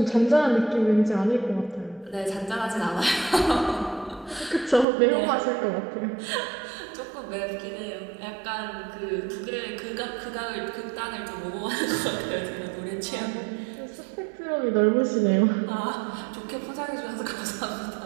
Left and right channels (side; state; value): left; drops out; at 4.9 s